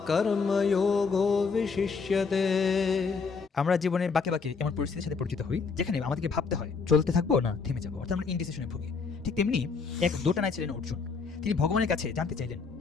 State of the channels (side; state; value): right; quieter; 5.0 dB